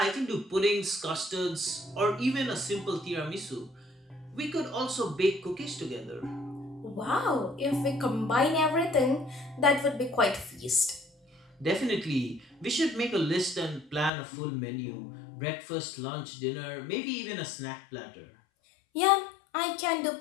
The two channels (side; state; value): right; drops out; at 14.1 s